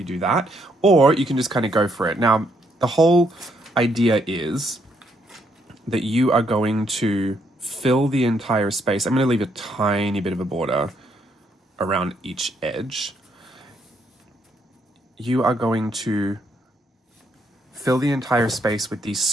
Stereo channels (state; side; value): normal; both; correlation 0.73